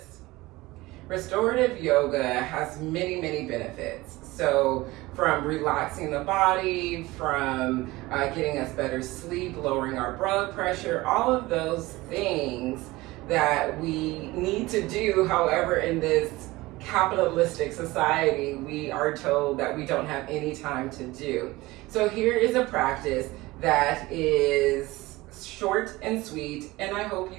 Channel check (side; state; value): left; quieter; 20.0 dB